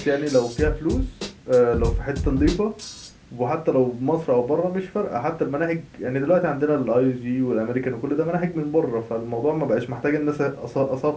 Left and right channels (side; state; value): both; identical; correlation 1.00